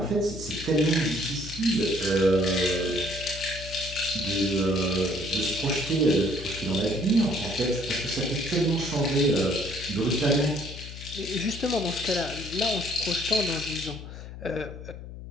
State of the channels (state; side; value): noise; left; hum, 12 dB below the sound